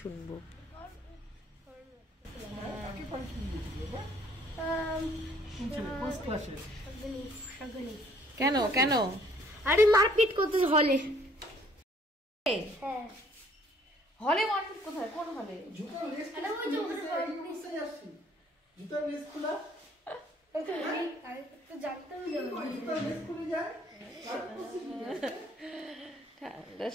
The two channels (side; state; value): both; normal; correlation 0.61